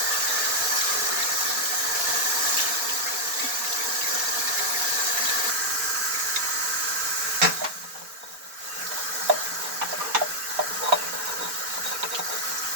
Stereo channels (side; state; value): left; late; 4.3 ms